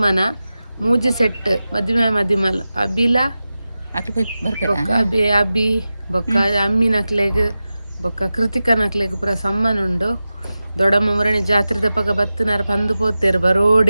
ಮೂಜಿ ಸೆಟ್ ಮದಿಮೆ ಮದಿಮಲ್ ಅಬಿಲ ಅಬಿ ಬೊಕ್ಕ ಅಮ್ಮಿನಕ್ಲೆಗ್ ಬೊಕ್ಕ ಕೃತಿಕನಕ್ಲೆಗ್ ಪೂರ ಸಮ್ಮನ ಉಂಡು. ದೊಡ್ಡಮ್ಮ ಮುರಣಿ ಜಾತ್ರೆ ಪಕ್ಕ ಬತ್ತನಾರ ಪಂದು ಪೋತೇರು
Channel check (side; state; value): both; inverted; correlation -0.94